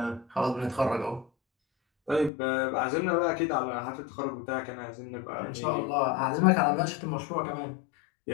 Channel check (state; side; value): drops out; right; at 2.3 s